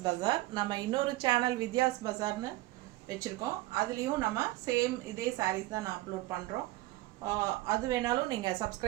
Bazaar. நம்ம இன்னொரு channel Vidya's Bazaarனு வெச்சிருக்கோம். அதுலயும் நம்ம same இதே sarees தான் நான் அப்லோட் பண்றோம். அது வேணாலும் நீங்க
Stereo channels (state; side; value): quieter; left; 18.3 dB